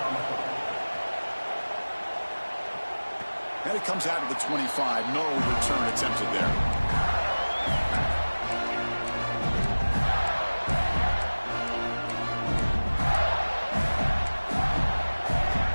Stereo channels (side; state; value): both; inverted; correlation -1.00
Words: And it comes out of the 25. No return attempted there.